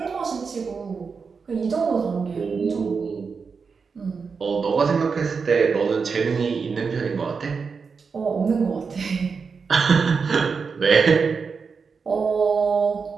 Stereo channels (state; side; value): quieter; left; 5.3 dB